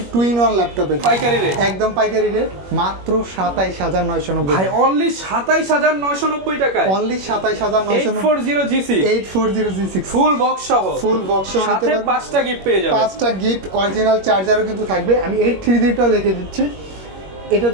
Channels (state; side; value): late; left; 21 ms